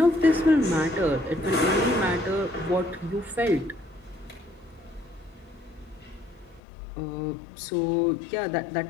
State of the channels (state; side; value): drops out; right; at 6.6 s